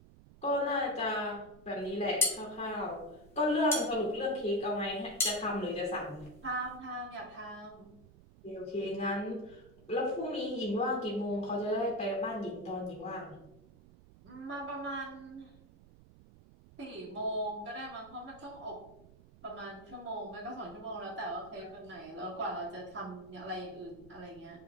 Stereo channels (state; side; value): noise; right; rumble, 22 dB below the sound